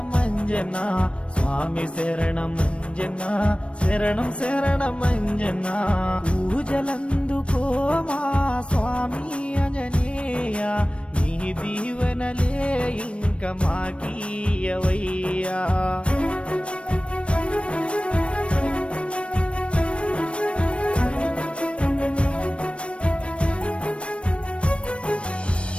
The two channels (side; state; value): right; late; 0.060 ms